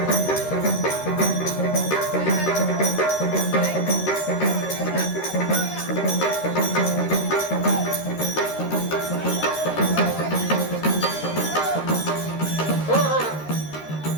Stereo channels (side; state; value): right; late; 13 ms